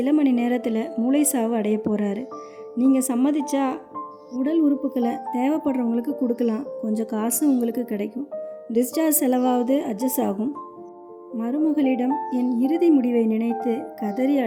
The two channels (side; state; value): both; identical; correlation 1.00